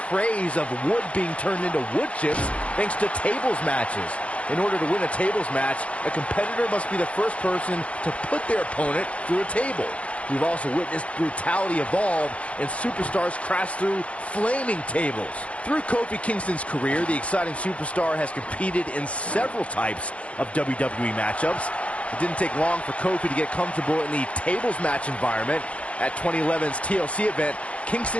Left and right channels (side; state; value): right; late; 0.063 ms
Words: of wood being turned into wood chips thanks to tables matches. In order to win a tables match, a competitor must be the first person to put their opponent through a table. We've also witnessed brutality evolve and superstars crash through flaming tables. Through Kofi Kingston's career, the exciting superstar has competed in several types of WWE matchups. It didn't take long for Kofi to get comfortable in the tables match environment. At 2011's TLC event,